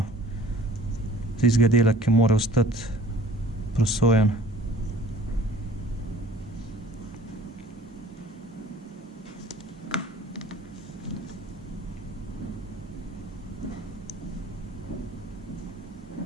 tistega dela, ki mora ostati prosojen.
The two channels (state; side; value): normal; both; correlation 0.49